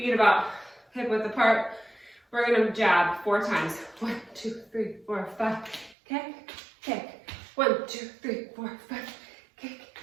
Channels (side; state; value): left; drops out; at 6.0 s